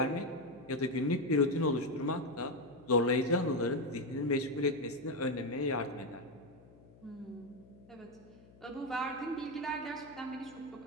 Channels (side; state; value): left; noise; hum, 23 dB below the sound